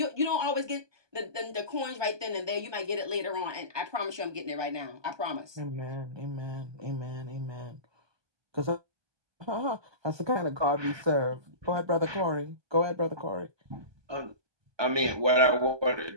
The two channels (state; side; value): late; left; 1.2 ms